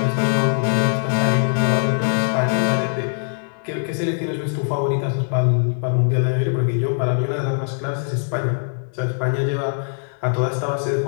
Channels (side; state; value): right; silent; digital silence